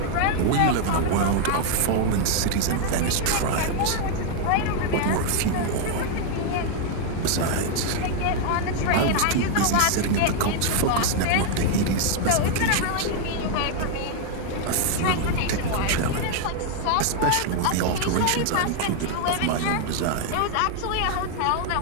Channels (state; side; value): different; both; correlation 0.00